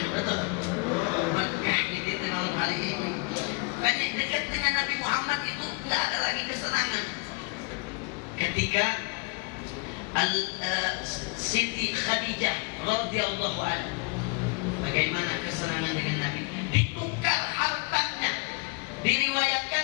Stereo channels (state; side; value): quieter; right; 30.6 dB